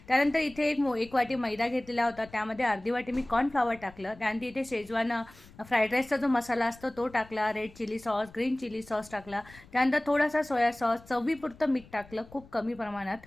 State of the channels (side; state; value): left; noise; rumble, 23 dB below the sound